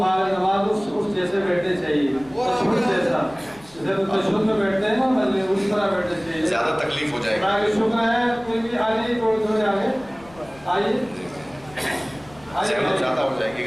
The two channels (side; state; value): left; noise; rumble, 24 dB below the sound